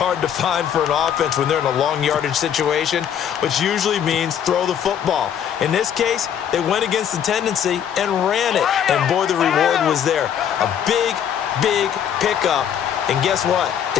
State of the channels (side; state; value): right; quieter; 9.0 dB